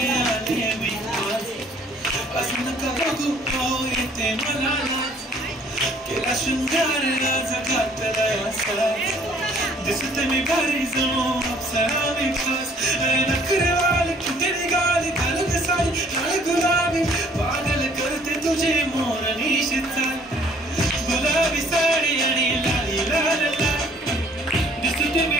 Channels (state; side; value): normal; both; correlation 0.59